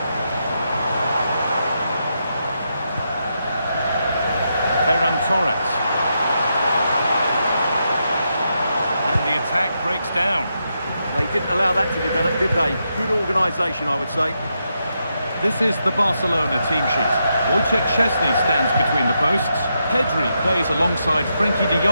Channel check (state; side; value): inverted; both; correlation -0.83